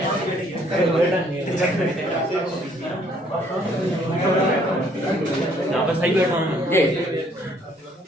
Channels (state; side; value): normal; both; correlation 0.63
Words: सही बैठा हूँ,